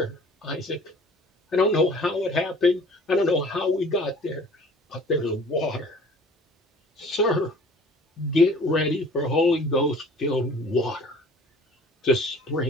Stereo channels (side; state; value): both; normal; correlation 0.48